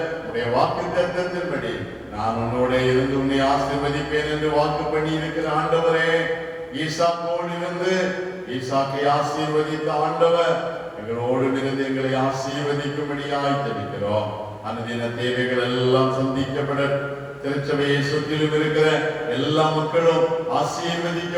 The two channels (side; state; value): both; identical; correlation 1.00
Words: உடைய வாக்கு தத்தத்தின்படி நான் உன்னோட இருந்து உன்னை ஆசீர்வதிப்பேன் என்று வாக்கு பண்ணி இருக்கிற ஆண்டவரே, ஈசாக்கோடு இருந்து ஈசாக்கை ஆசீர்வதித்த ஆண்டவர் எங்களோடு இருந்து எங்களை ஆசீர்வதிக்கும்படியாய் ஜெபிக்கிறோம். அனுதின தேவைகள் எல்லாம் சந்திக்கப்பட திருச்சபையை சுற்றிலும் இருக்கிற எல்லா மக்களும்